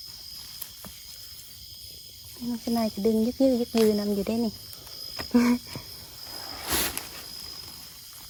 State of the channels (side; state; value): both; identical; correlation 1.00